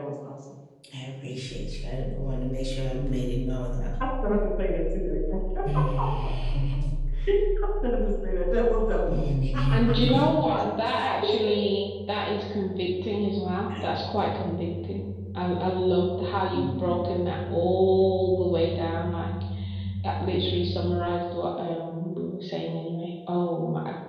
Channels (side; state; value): both; identical; correlation 1.00